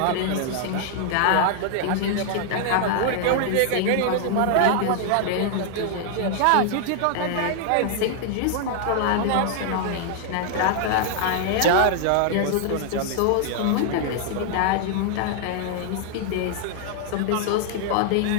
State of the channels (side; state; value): both; different; correlation 0.00